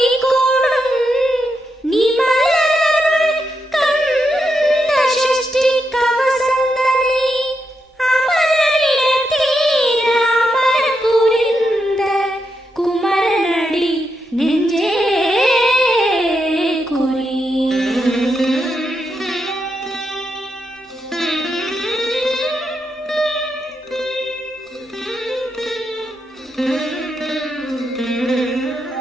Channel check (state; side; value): normal; both; correlation 0.83